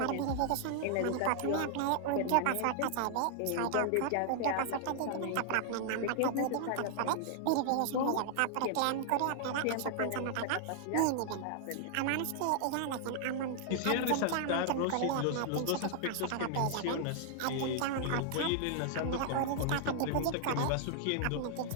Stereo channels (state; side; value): different; both; correlation 0.00